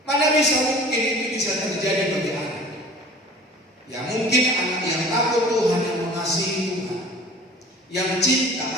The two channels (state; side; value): normal; both; correlation 0.44